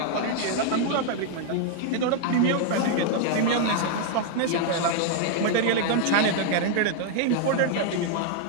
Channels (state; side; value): different; both; correlation 0.00